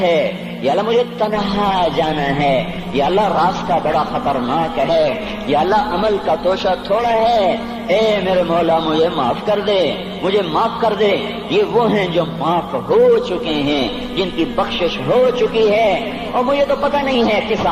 ہے، یا اللہ مجھے تنہا جانا ہے، یا اللہ راستہ بڑا خطرناک ہے، یا اللہ عمل کا توشہ تھوڑا ہے، اے میرے مولا مجھے معاف کر دے، مجھے معاف کر دے۔ یہ وہ ہیں جو معاف ہو چکے ہیں، جن کی بخشش ہو چکی ہے، اور مجھے تو پتہ نہیں ہے کس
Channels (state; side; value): identical; both; correlation 1.00